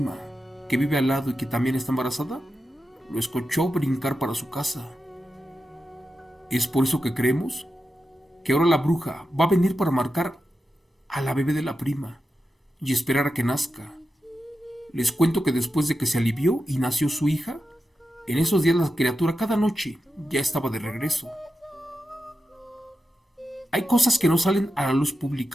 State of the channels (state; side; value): normal; both; correlation 0.90